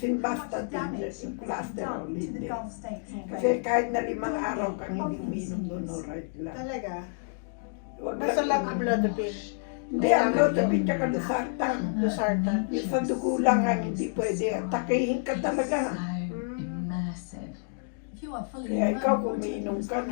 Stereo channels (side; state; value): right; silent; digital silence